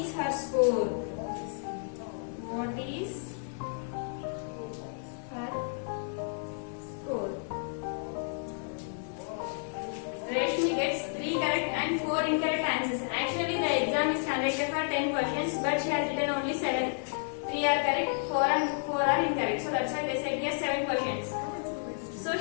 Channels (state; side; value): silent; right; digital silence